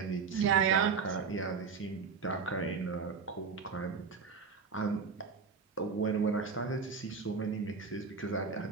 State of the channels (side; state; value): left; quieter; 5.4 dB